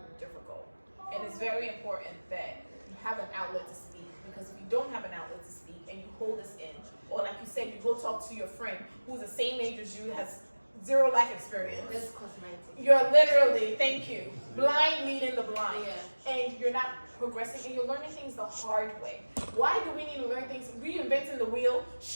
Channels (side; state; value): both; inverted; correlation -1.00